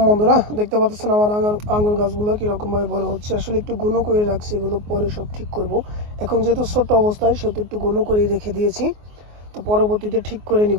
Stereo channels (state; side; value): late; left; 24 ms